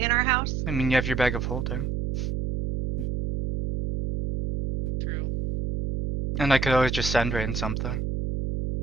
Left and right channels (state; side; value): noise; right; hum, 2 dB below the sound